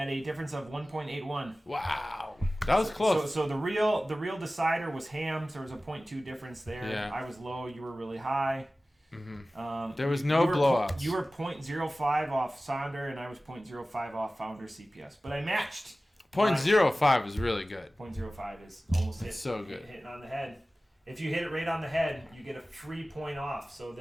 a difference of 1.81. Wow. That was close. So the real decider was Hams. There was a 0.2 difference there. Yeah. I was low. You were really high. Mm-hmm. There was no blowouts. You were 0.05 off Sonder, and I was 0.05 off Founder CPS. But I matched. 0.05 is really good. 0.05 is almost hitting on the head. If you hit it right on the head, you get a free point off. So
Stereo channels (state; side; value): normal; both; correlation 0.97